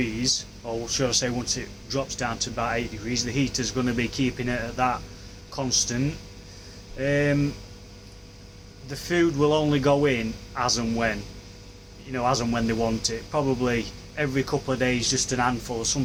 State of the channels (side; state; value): both; identical; correlation 1.00